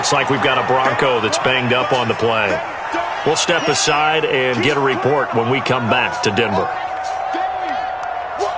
like we've got a Bronco that's banged up on the play. We'll step aside and get a report when we come back to Denver.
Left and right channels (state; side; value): identical; both; correlation 1.00